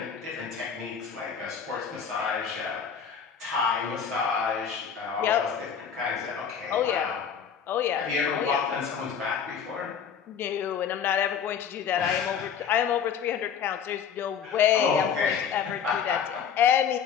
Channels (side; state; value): right; quieter; 7.4 dB